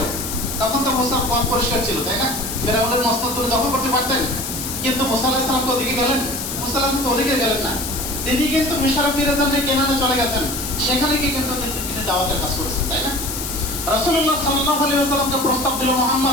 তখন তো মুসা পথ পরিষ্কার ছিল, তাই না? ফেরাউনের মস্তক তুলে দখল করতে পারতেন, কিন্তু মুসা আলাইহিস সালাম ওদিকে গেলেন? মুসা আলাইহিস সালাম তো ওদিকে গেলেন না। তিনি কিন্তু মিশরে ফিরে যান, কেনানে চলে গেছেন, সেখানে গিয়ে কিন্তু তিনি দাওয়াতের কাজ করেছেন, তাই না? রাসূলুল্লাহ সাল্লাল্লাহু আলাইহি ওয়াসাল্লামকে প্রস্তাব দিল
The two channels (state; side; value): noise; left; hiss, 5 dB below the sound